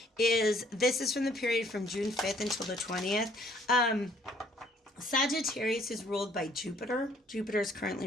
is, this is from the period from June 5th until the 20th. Sagittarius is ruled by Jupiter. Jupiter is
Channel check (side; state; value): both; normal; correlation 0.62